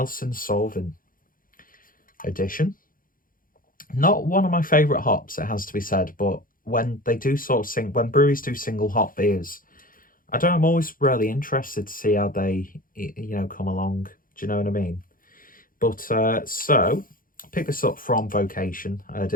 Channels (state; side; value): late; right; 0.40 ms